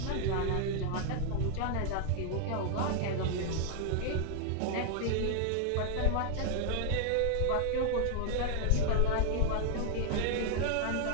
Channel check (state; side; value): different; both; correlation 0.00